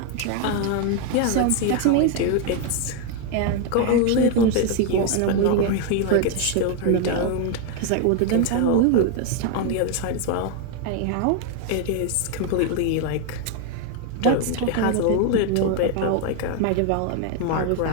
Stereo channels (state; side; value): different; both; correlation 0.01